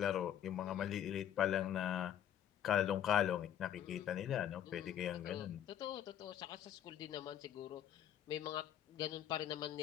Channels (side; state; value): right; quieter; 10.6 dB